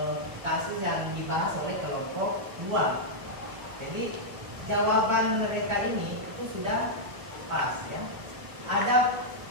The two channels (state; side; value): late; left; 1.6 ms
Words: kasus yang dibahas oleh kelompok 2. Jadi jawaban mereka ini itu sudah pas ya. Ada